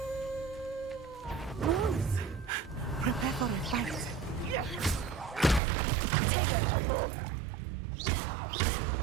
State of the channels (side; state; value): left; drops out; at 5.6 s